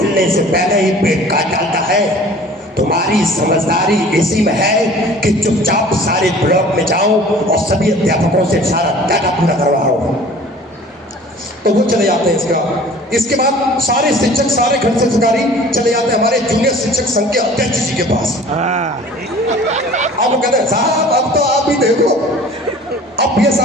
से पहले ही पेट काट डालता है। तुम्हारी समझदारी इसी में है कि चुपचाप सारे ब्लॉक में जाओ और सभी अध्यापकों से सारा डाटा पूरा करवाओ। तो वो चले जाते हैं। इसके बाद सारे शिक्षक, सारे खंड शिक्षकारी चले जाते हैं हमारे जूनियर शिक्षक संघ के अध्यक्ष जी के पास। अब वो कहते हैं साहब अब तो आप भी देखो। अब ये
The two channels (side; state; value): both; normal; correlation 0.46